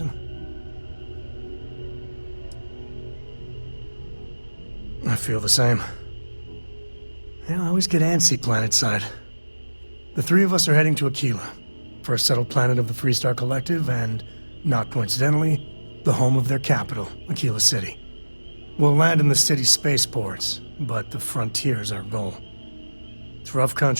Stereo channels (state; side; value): inverted; both; correlation -1.00